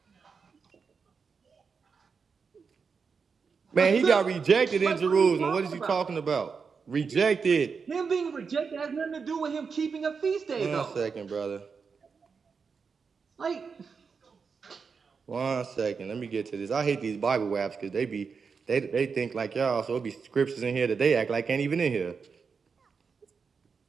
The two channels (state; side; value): quieter; left; 5.5 dB